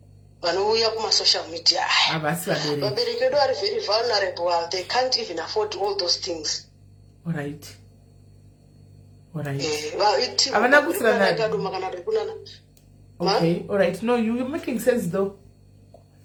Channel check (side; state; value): both; identical; correlation 1.00